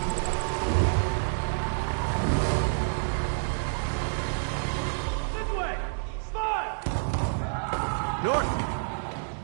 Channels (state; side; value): silent; left; digital silence